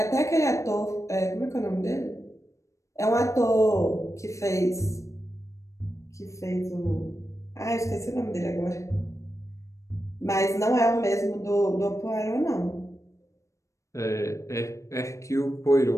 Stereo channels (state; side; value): late; right; 0.15 ms